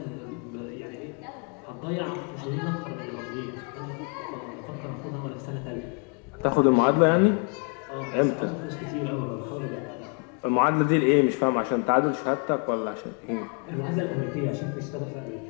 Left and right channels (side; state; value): right; quieter; 39.0 dB